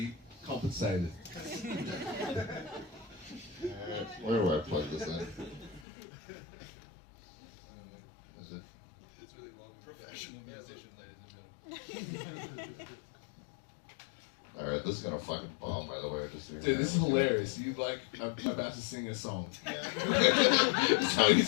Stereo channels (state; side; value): drops out; right; at 5.9 s